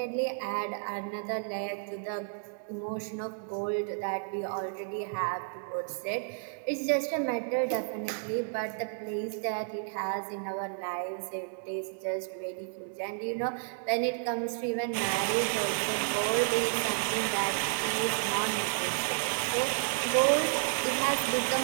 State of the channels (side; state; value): left; silent; digital silence